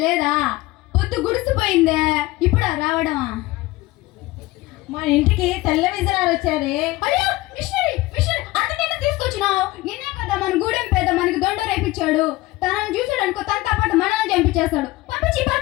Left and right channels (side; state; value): right; quieter; 19.1 dB